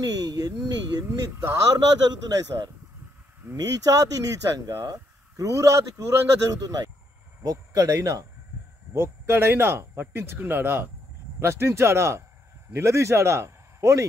ఎన్ని ఎన్ని దారుణాలు జరుగుతున్నాయి సార్. నీచాతి నీచంగా, క్రూరాతి క్రూరంగా జరుగుతున్నాయి. ఒక్కడైనా పట్టించుకున్నాడా? ప్రశ్నించాడా? నిలదీశాడా? పోనీ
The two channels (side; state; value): both; normal; correlation 0.75